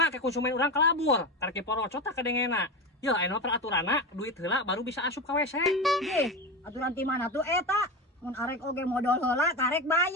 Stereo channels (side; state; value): both; normal; correlation 0.21